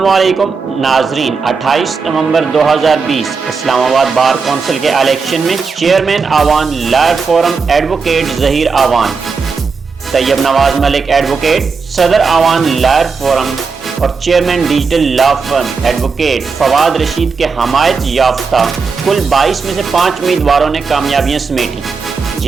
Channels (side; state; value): left; quieter; 5.0 dB